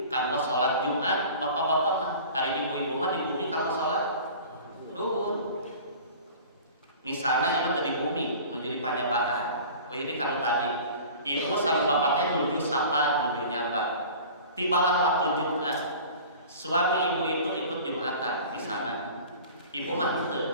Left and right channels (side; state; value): both; inverted; correlation -0.41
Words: kanggo sholat Jumat, bapak-bapak mah hari ibu-ibu mah di bumi kanggo sholat duhur. Misalnya ibu tadi bumi menuju panyabaan, oh ini kalau tadi ibu sama bapaknya menuju sapa, menuju nyamba. Tibalah waktu Jumat, suami ibu itu ikut Jumatan di sana. Ibu mah teu